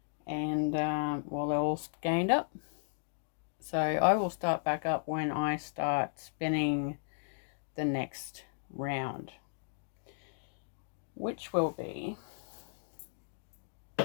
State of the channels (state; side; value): silent; right; digital silence